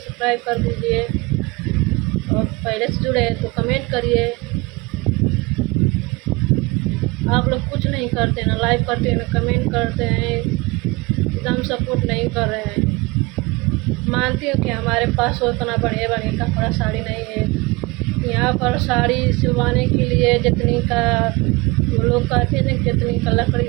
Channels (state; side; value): quieter; left; 24.6 dB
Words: कर दीजिए, और पहले से जुड़े हैं तो कमेंट करिए। आप लोग कुछ नहीं करते, ना लाइक करते हैं, ना कमेंट करते हैं, एकदम सपोर्ट नहीं कर रहे हैं। मानती हूँ कि हमारे पास उतना बढ़िया बढ़िया कपड़ा साड़ी नहीं है। यहाँ पर साड़ी सिलवाने के लिए जितनी का वो लोग कहते हैं, जितनी का लकड़ी